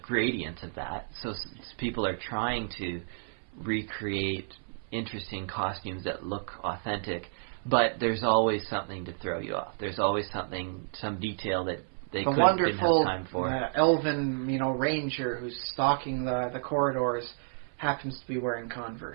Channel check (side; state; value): left; silent; 57 dB below the other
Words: gradients of that. So people are trying to recreate interesting costumes that look authentic, but there's always something to throw you off. There's always some detail that they didn't have time for. The wonderful elven, ranger who's stalking the corridors happens to be wearing